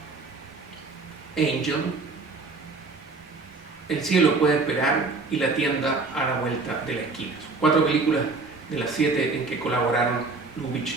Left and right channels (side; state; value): left; quieter; 3.8 dB